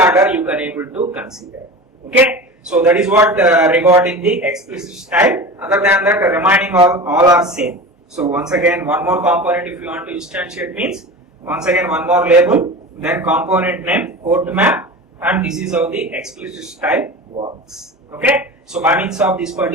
you can able to consider. Okay, so that is what regarding the explicit style. Other than that, remaining all are same. So once again, one more component if you want to instantiate means, once again one more label, then component name, port map, and this is how the explicit style works. Okay, so by means of this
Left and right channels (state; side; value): normal; both; correlation 0.32